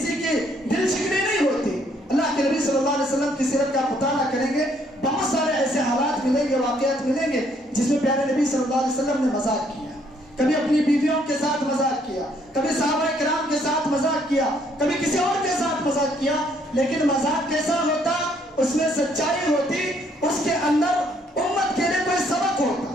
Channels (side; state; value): both; normal; correlation 0.67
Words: کی دل شکنی نہیں ہوتی. اللہ کے نبی صلی اللہ علیہ وسلم کی سیرت کا مطالعہ کریں گے، بہت سارے ایسے حالات ملیں گے، واقعات ملیں گے جس میں پیارے نبی صلی اللہ علیہ وسلم نے مذاق کیا. کبھی اپنی بیویوں کے ساتھ مذاق کیا، کبھی صحابہ کرام کے ساتھ مذاق کیا، کبھی کسی اور کے ساتھ مذاق کیا. لیکن مذاق کیسا ہوتا؟ اس میں سچائی ہوتی، اس کے اندر امت کے لیے کوئی سبق ہوتا.